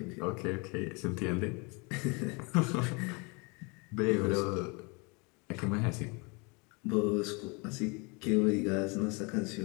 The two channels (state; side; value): quieter; right; 30.3 dB